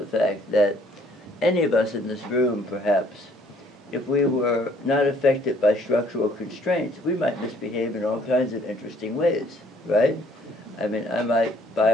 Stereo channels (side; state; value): both; normal; correlation 0.61